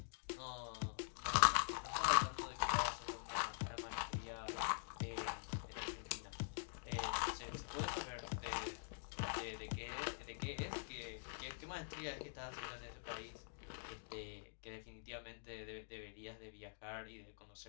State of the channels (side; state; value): right; silent; digital silence